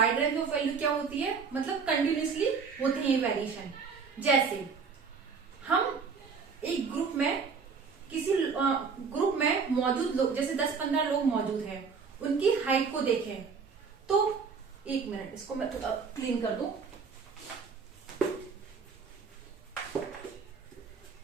रेंज ऑफ वैल्यू क्या होती है, मतलब कंटिन्यूअसली होते हैं ये वेरिएशन। जैसे हम एक ग्रुप में किसी ग्रुप में मौजूद लोग, जैसे 10-15 लोग मौजूद हैं, उनकी हाइट को देखें तो, एक मिनट इसको मैं थोड़ा क्लीन कर दूं।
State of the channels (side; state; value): left; quieter; 5.5 dB